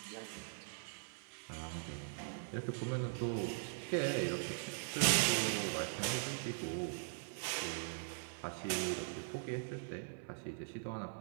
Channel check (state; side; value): silent; left; 50 dB below the other